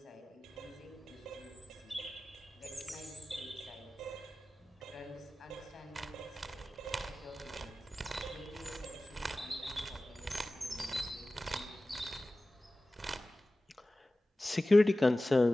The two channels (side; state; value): both; normal; correlation 0.96